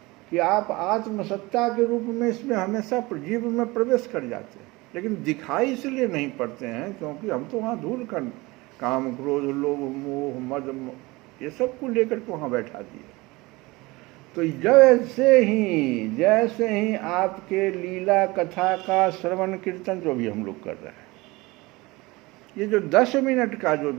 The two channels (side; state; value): left; quieter; 22.4 dB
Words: कि आप आत्मसत्ता के रूप में इसमें हमेशा जीव में प्रवेश कर जाते हैं, लेकिन दिखाई इसलिए नहीं पड़ते हैं क्योंकि हम तो वहाँ धूल कर काम क्रोध लोभ मोह मद ये सब को लेकर के वहाँ बैठा दिए। तो जैसे ही आपके लीला कथा का श्रवण कीर्तन जो भी हम लोग कर रहे हैं, ये जो 10 मिनट का जो